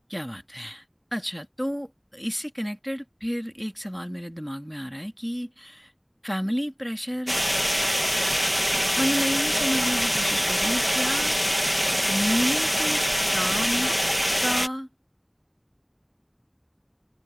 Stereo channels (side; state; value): both; identical; correlation 1.00